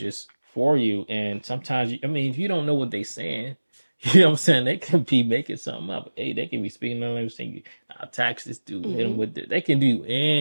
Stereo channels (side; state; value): both; inverted; correlation -1.00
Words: for you. And sometimes, I mean, if you don't know what they're saying, you know what I'm saying? They could be making something up. Hey, they can be speaking the language saying, I'll tax this dude, hit him Mhm. with this. They can do